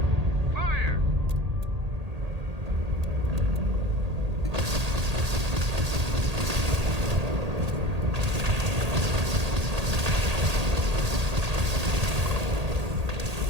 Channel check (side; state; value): left; late; 1.8 ms